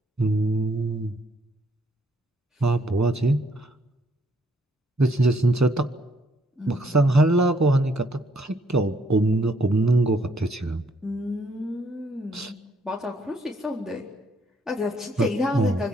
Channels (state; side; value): normal; both; correlation 0.69